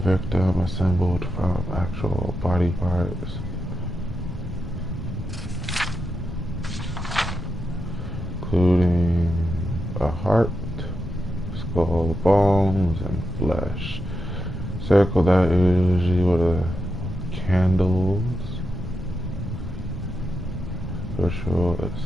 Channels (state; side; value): normal; both; correlation 0.87